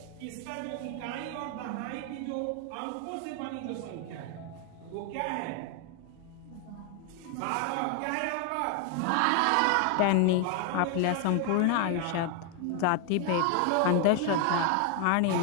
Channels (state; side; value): different; both; correlation 0.00